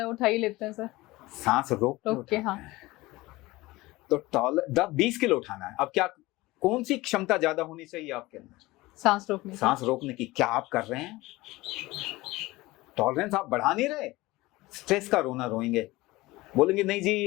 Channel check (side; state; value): right; quieter; 20.0 dB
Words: उठा ही लेते हैं सर, सांस रोक के उठाते हैं। तो 20 किलो उठाना है। अब क्या, कौन सी क्षमता ज्यादा होनी चाहिए आपके अंदर? सांस रोकने की। क्या आप कर रहे हैं? टॉलरेंस आप बढ़ा नहीं रहे। स्ट्रेस का रोना रोएंगे, बोलेंगे नहीं जी